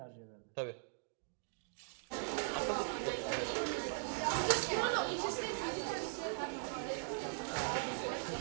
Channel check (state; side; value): silent; left; digital silence